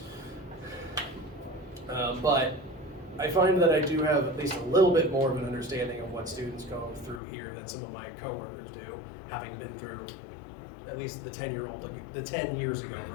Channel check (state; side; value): drops out; right; at 7.2 s